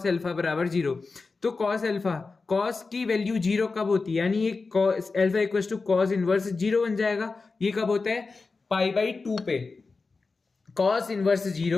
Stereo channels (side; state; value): right; quieter; 4.1 dB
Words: अल्फा बराबर जीरो। तो कॉस अल्फा, कॉस की वैल्यू जीरो कब होती है, यानी ये cos alpha equal to cos inverse zero बन जाएगा। ये कब होता है, पाई बाई टू पे। कॉस इनवर्स